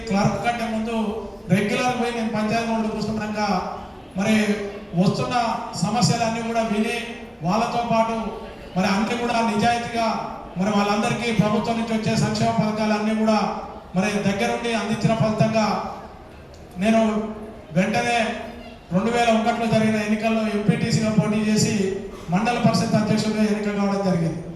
క్లర్క్ కంటే ముందు రెగ్యులర్ పోయి నేను పంచాయతీ రోడ్డు కూర్చున్నాక మరి వస్తున్న సమస్యలన్నీ కూడా విని వాళ్ళతో పాటు మరి అన్ని కూడా నిజాయితీగా మరి వాళ్ళందరికీ ప్రభుత్వం నుంచి వచ్చే సంక్షేమ పథకాలన్నీ కూడా మరి దగ్గరుండి అందించిన ఫలితంగా నేను వెంటనే 2001లో జరిగిన ఎన్నికల్లో ఎంపీటీసీగా పోటీ చేసి మండల పరిషత్ అధ్యక్షుడిగా ఎన్నిక కావడం జరిగింది.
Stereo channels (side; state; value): both; identical; correlation 1.00